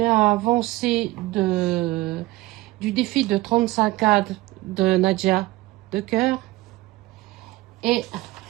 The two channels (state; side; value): quieter; left; 19.1 dB